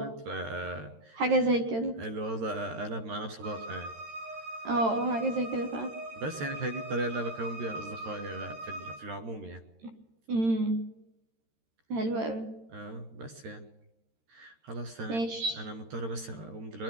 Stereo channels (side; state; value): left; late; 13 ms